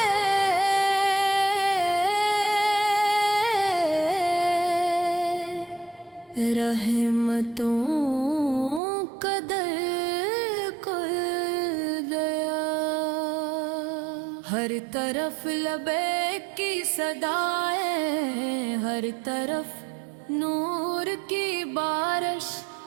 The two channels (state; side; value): drops out; left; at 8.8 s